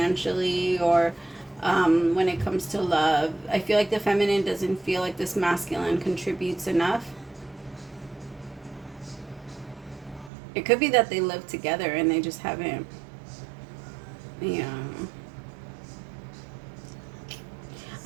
or when it comes to love. I feel like the feminine doesn't feel like this masculine contributes enough. It could be that they live together and they just haven't,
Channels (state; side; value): drops out; left; at 10.3 s